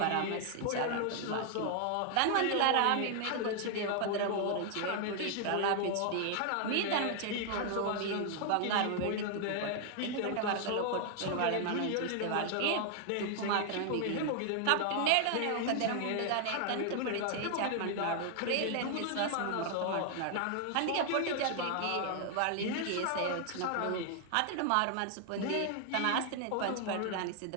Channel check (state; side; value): different; both; correlation 0.00